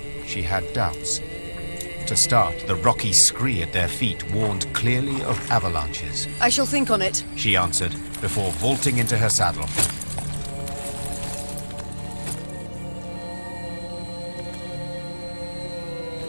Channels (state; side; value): inverted; both; correlation -1.00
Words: she had doubts. To start, the rocky scree at their feet warned clearly of avalanches. I shall think on it, she answered, before vaulting into her saddle.